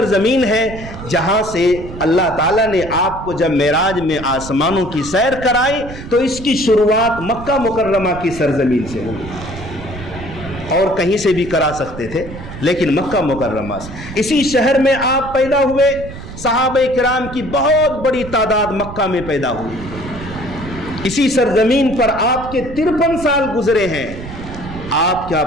ہے جہاں سے اللہ تعالیٰ نے آپ کو جب معراج میں آسمانوں کی سیر کرائی تو اس کی شروعات مکہ مکرمہ کی سرزمین سے ہوئی، اور کہیں سے بھی کرا سکتے تھے لیکن مکہ مکرمہ سے۔ اسی شہر میں آپ پیدا ہوئے، صحابہ کرام کی بہت بڑی تعداد مکہ میں پیدا ہوئی، اسی سرزمین پر آپ کے 53 سال گزرے ہیں۔ آپ کیا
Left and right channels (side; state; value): right; noise; rumble, 12 dB below the sound